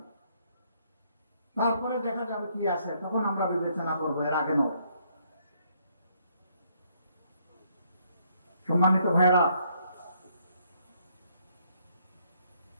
তারপরে দেখা যাবে কি আছে, তখন আমরা বিবেচনা করবো, এর আগে নয়। সম্মানিত ভাইরা,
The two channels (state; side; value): inverted; both; correlation -0.70